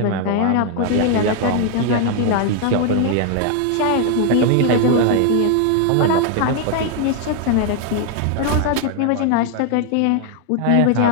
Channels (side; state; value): both; different; correlation 0.00